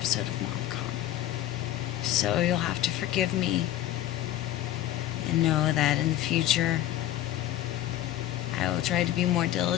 of MomCom. So you'll have to forgive me and know that in the future I will try to be more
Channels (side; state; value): right; quieter; 13.2 dB